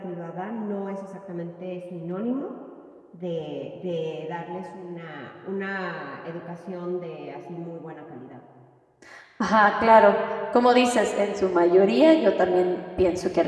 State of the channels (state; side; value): identical; both; correlation 1.00